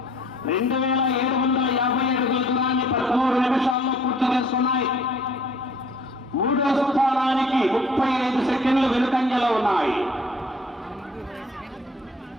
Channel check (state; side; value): normal; both; correlation 0.56